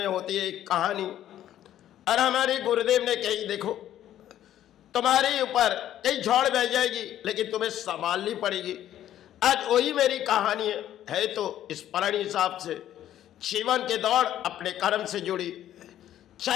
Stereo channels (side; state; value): right; quieter; 11.9 dB